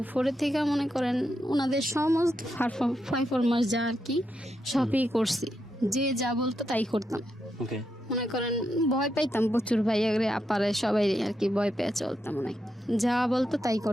4-এর থেকে মনে করেন ওনাদের সমস্ত পারফরমেন্স যা আর কি সবই করছি, যে যা বলতো তাই করতাম। ওকে মনে করেন ভয় পাইতাম প্রচুর, ভাইয়ারে আপারে সবাই আর কি ভয় পেয়ে চলতাম, অনেক যা বলতো তাই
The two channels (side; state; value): both; normal; correlation 0.83